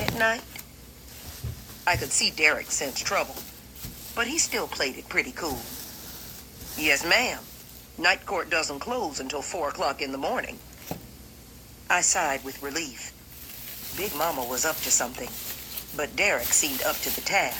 at night? I could see Derek sense trouble, but he still played it pretty cool. Yes, ma'am. Night court doesn't close until 4 o'clock in the morning. I sighed with relief. Big Mama was up to something, but Derek seemed up to the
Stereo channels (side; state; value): both; identical; correlation 1.00